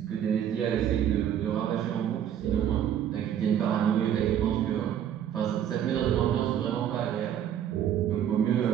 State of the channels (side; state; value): left; quieter; 9.9 dB